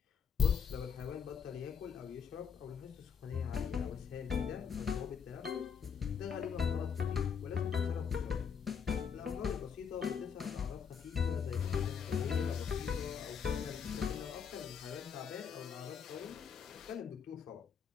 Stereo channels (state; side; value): quieter; right; 6.9 dB